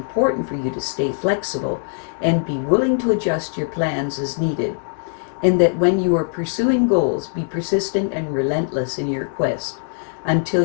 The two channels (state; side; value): silent; right; digital silence